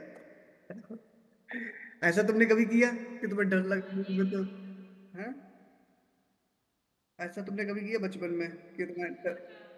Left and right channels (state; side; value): identical; both; correlation 1.00